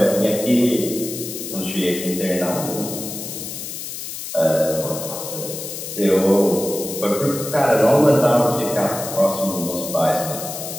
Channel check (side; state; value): left; noise; hiss, 8 dB below the sound